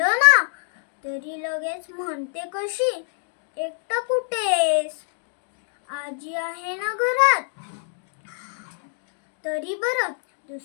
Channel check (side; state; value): right; silent; digital silence